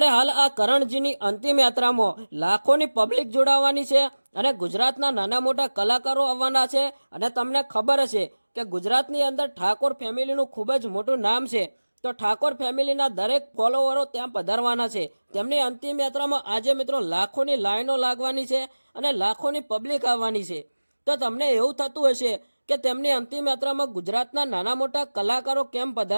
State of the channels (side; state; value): both; inverted; correlation -1.00